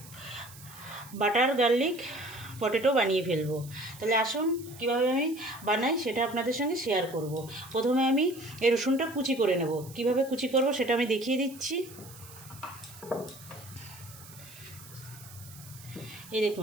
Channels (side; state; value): right; noise; hiss, 18 dB below the sound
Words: বাটার গার্লিক পটেটো বানিয়ে ফেলবো। তাহলে আসুন কীভাবে আমি বানাই সেটা আপনাদের সঙ্গে শেয়ার করব। প্রথমে আমি এই রসুনটা কুচি করে নেব। কিভাবে কুচি করব সেটা আমি দেখিয়ে দিচ্ছি। এই